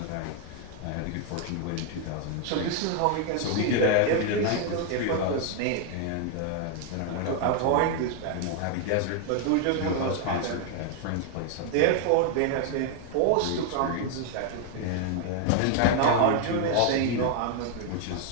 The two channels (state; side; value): different; both; correlation 0.00